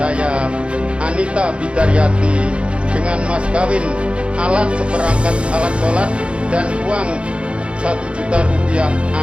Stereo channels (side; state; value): left; late; 0.059 ms